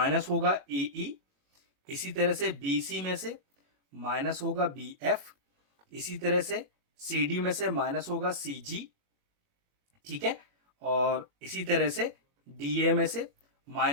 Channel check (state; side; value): late; left; 21 ms